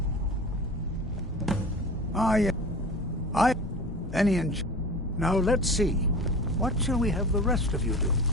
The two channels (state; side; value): normal; both; correlation 0.36